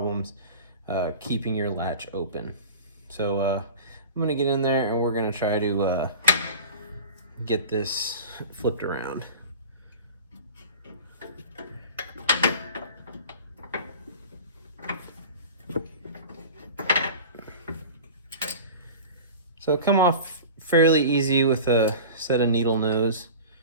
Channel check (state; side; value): inverted; both; correlation -0.36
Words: keeping your latch open. So I'm gonna get in there and we're gonna try to get this flipped around. So come off fairly easy with a set of needle nose.